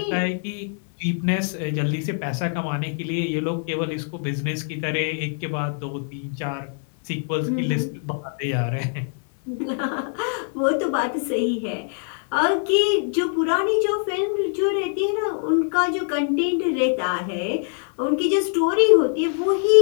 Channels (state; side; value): silent; right; 58 dB below the other